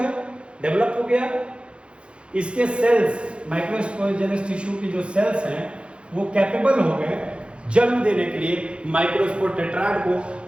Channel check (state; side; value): late; left; 0.057 ms